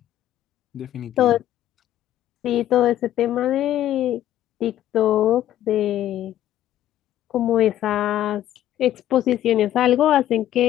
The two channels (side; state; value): right; quieter; 12.4 dB